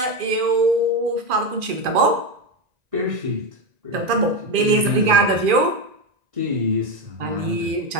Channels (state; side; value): late; left; 2.4 ms